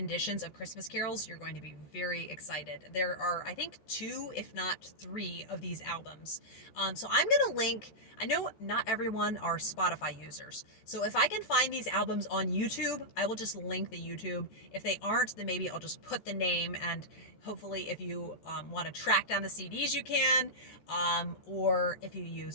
of Christmas carols, you're going to be very excited. There are, I think, 2, if not 3 of these albums. So I'm going to link, I know not everyone are Spotify users. So if I can find these albums on YouTube, I will just link the YouTube. If they aren't, then maybe I'll just put the name, and hopefully if you want to track down the CDs, you can. Or if you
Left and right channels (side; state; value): right; late; 13 ms